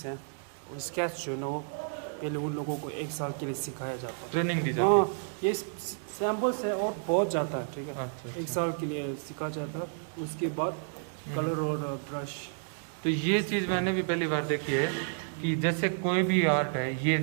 हैं। और स्केच जो है ना पहले उन लोगों को 1 साल के लिए सिखाया जाता है, ट्रेनिंग दी जाती है। हाँ ये सैम्पल्स है और बहुत जाता है, ठीक है। अच्छा, 1 साल के लिए सिखा जाता है, उसके बाद कलर और ब्रश। तो ये चीज़ मैंने भी पहली बार देखी है कि जैसे कोई भी आर्ट है, ये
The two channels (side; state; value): left; silent; digital silence